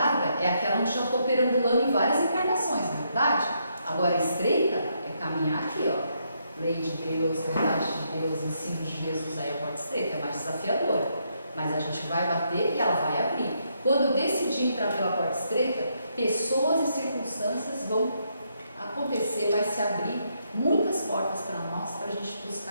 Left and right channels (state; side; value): inverted; both; correlation -0.77